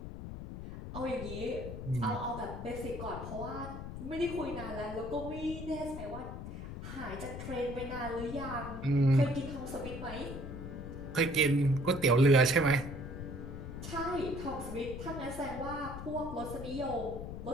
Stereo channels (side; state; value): left; noise; rumble, 8 dB below the sound